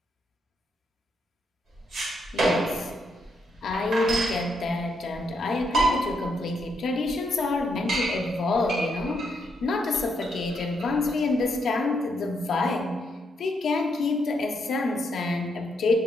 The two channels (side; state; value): both; normal; correlation 0.78